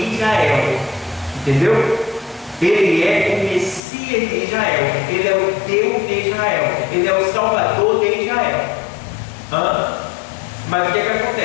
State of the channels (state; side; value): drops out; right; at 3.8 s